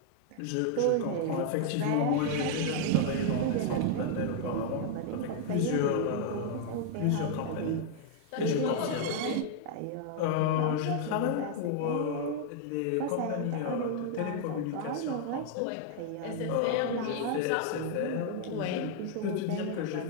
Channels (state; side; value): different; both; correlation 0.00